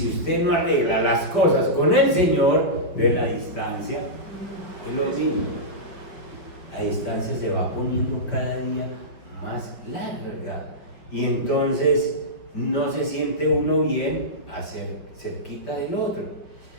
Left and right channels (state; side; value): late; right; 5.2 ms